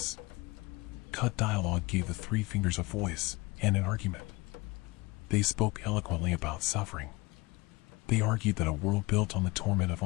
Cut dialogue gave the Three Fingers a voice, and an argument. They spoke eloquently about suffering. They argued that a world built on the torment of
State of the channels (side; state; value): right; quieter; 23.2 dB